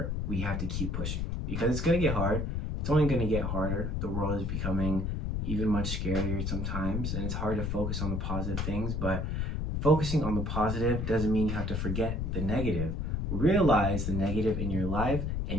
we have to keep pushing because it's going to get hard. It's only going to get harder. The world is becoming even much scarier sometimes, and it's hard to focus on the positive things, but focusing on the positive doesn't mean you have to forget the negative. Realize the negative in your life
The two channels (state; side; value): noise; left; rumble, 1 dB below the sound